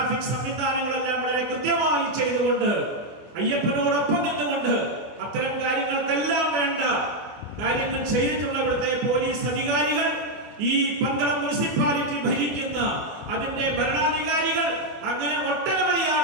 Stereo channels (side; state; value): left; late; 24 ms